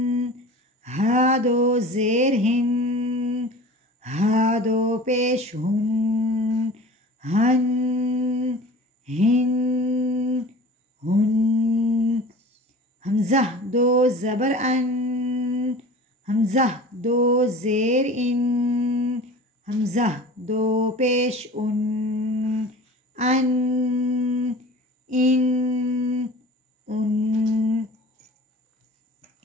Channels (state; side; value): normal; both; correlation 0.40